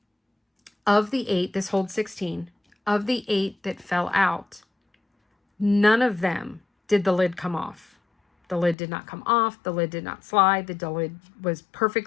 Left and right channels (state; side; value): drops out; right; at 8.8 s